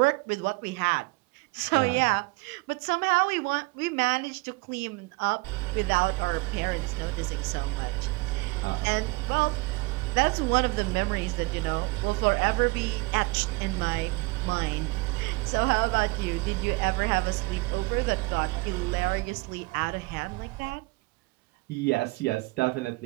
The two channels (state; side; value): quieter; left; 25.2 dB